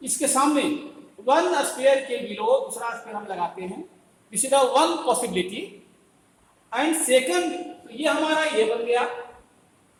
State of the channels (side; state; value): both; identical; correlation 1.00